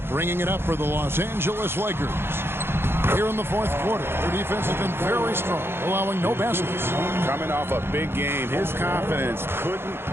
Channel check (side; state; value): left; late; 0.11 ms